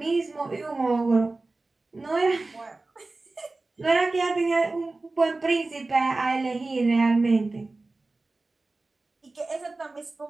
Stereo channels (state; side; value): quieter; left; 3.3 dB